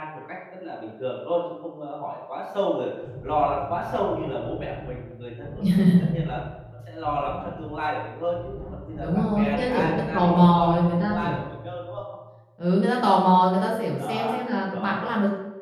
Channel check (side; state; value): both; identical; correlation 1.00